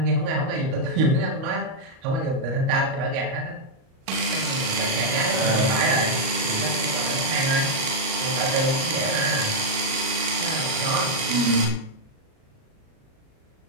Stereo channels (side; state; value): left; late; 37 ms